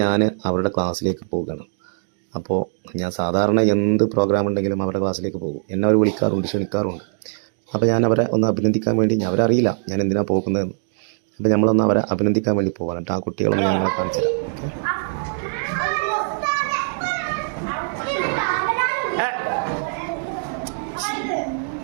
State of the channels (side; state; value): left; silent; digital silence